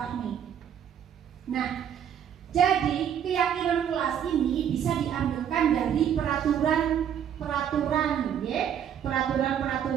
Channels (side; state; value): left; quieter; 9.1 dB